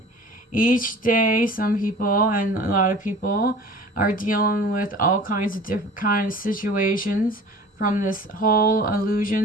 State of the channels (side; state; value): both; normal; correlation 0.43